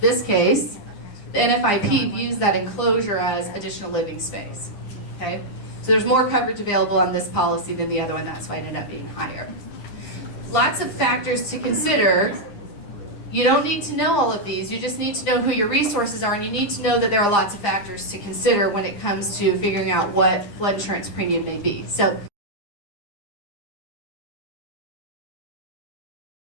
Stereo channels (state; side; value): late; right; 9.8 ms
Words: NFIP views that enclosure as additional living space. Okay? So there's more coverage available on this policy than the other one. That's why it ended up being higher. Lots of factors to consider. You don't need to know all of these. You just need to know who your resources are, and you need to know that there are lots of factors to consider when it comes to figuring out what flood insurance premium may be. So